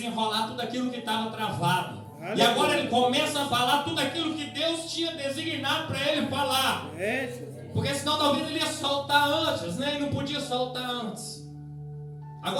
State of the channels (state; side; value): identical; both; correlation 1.00